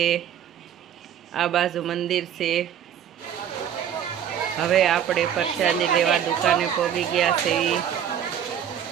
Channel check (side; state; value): left; quieter; 9.4 dB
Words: आ बाजू मंदिर से। हवे आपणे प्रसादी लेवा दुकाने पगी गया से।